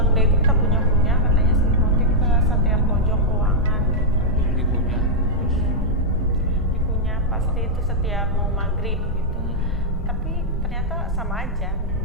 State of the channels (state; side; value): normal; both; correlation -0.05